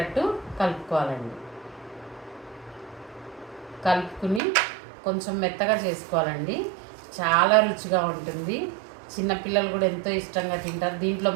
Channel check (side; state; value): left; drops out; at 4.4 s